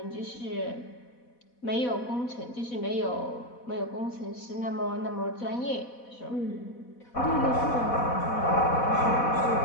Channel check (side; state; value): right; late; 4.1 ms